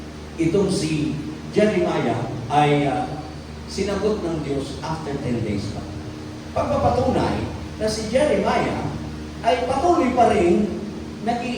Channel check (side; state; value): both; identical; correlation 1.00